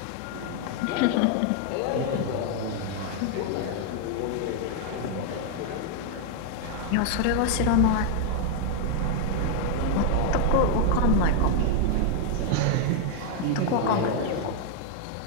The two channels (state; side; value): different; both; correlation 0.00